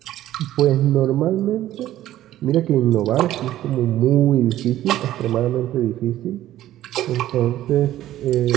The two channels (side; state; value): left; quieter; 13.6 dB